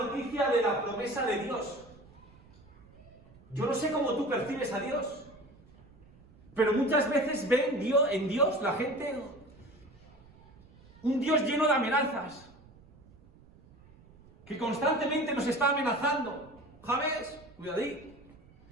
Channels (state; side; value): noise; right; rumble, 25 dB below the sound